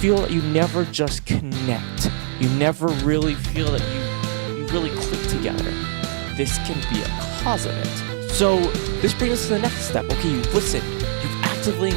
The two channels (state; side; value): silent; left; 64 dB below the other